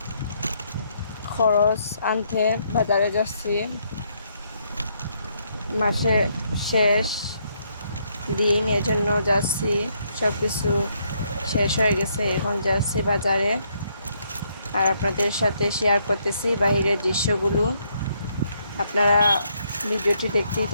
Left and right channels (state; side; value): inverted; both; correlation -0.73